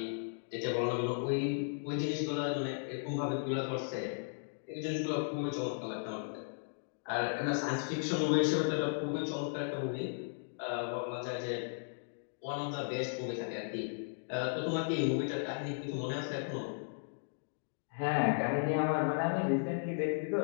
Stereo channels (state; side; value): silent; right; digital silence